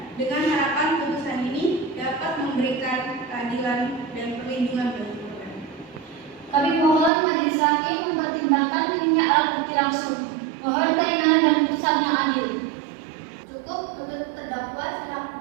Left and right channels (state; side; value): drops out; left; at 7.1 s